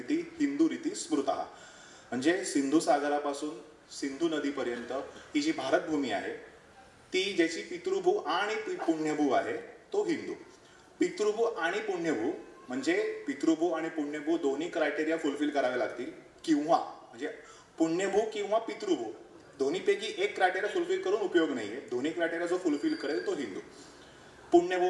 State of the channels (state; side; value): identical; both; correlation 1.00